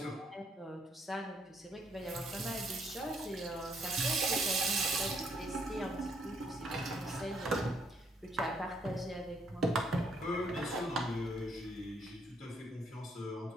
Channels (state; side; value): normal; both; correlation 0.70